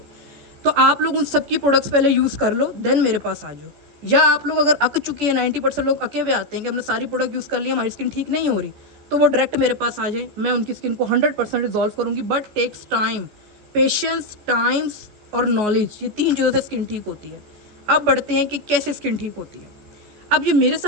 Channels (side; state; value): left; late; 14 ms